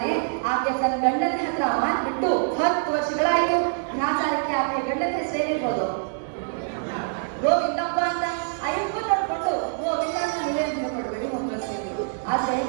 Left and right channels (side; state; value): left; silent; digital silence